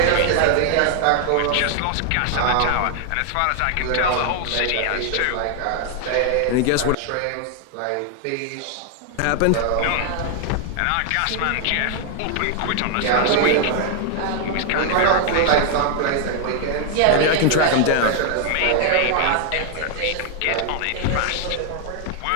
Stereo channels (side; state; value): both; different; correlation 0.00